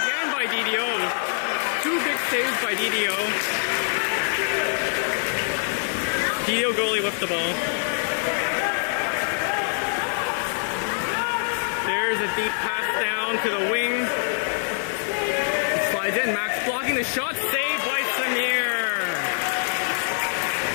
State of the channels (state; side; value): silent; right; digital silence